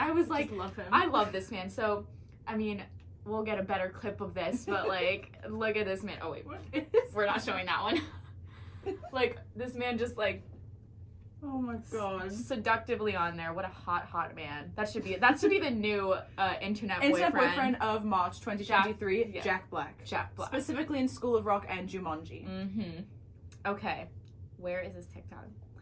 was like, just love him. I love this man. So, I mean, we'll get a better clip of this, but look at this man. Oh wait, we're not showing that one. This man just oh my god, seductively on there. What a hot man. That should be the new internet boyfriend of March 2023. Jack Black. Jack Black. Specifically in School of Rock and Jumanji. Mm-hmm. Okay. Where is this TikTok?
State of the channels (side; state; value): both; identical; correlation 1.00